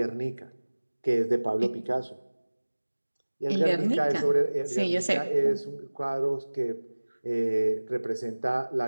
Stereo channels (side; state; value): both; inverted; correlation -1.00